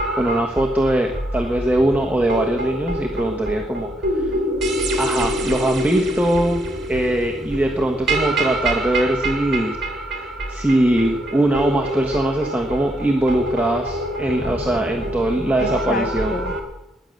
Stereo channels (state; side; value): normal; both; correlation 0.76